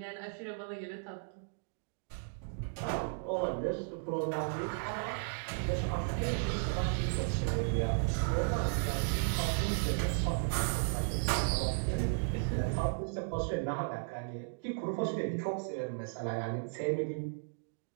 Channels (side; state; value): left; silent; digital silence